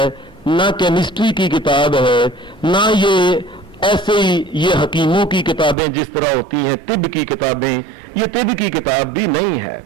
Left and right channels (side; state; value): left; drops out; at 5.8 s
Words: نہ کیمسٹری کی کتاب ہے، نہ یہ ایسے ہی یہ حکیموں کی کتابیں جس طرح ہوتی ہیں، طب کی کتابیں، یہ طب کی کتاب بھی نہیں ہے.